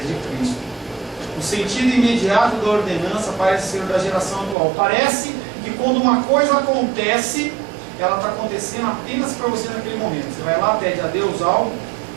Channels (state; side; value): drops out; left; at 4.5 s